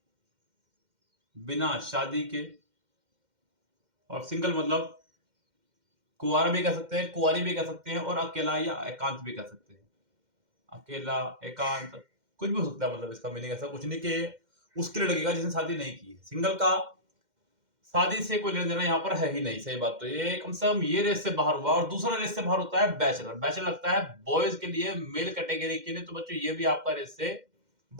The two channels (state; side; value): late; left; 2.1 ms